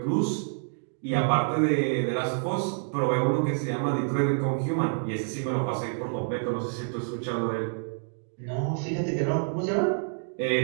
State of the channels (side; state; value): left; silent; digital silence